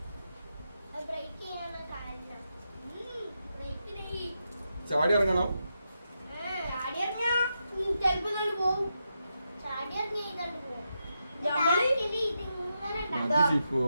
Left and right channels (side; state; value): both; inverted; correlation -0.85